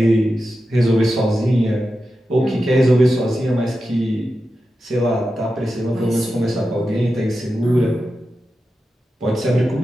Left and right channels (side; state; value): both; normal; correlation 0.91